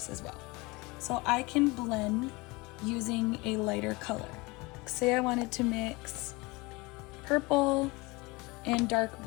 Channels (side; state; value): right; quieter; 24.5 dB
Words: as well. So I can blend using a lighter color. Say I wanted to mix purple and dark